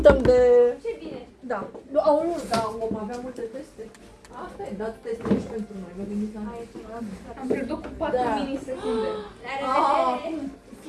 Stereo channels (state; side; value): identical; both; correlation 1.00